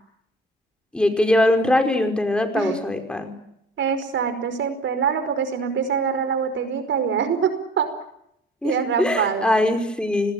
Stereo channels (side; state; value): both; normal; correlation 0.48